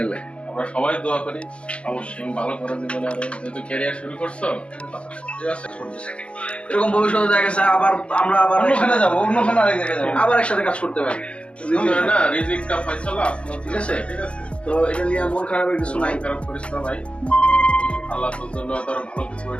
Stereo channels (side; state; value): right; late; 0.059 ms